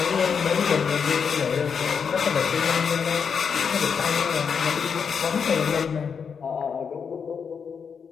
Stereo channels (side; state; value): right; quieter; 6.4 dB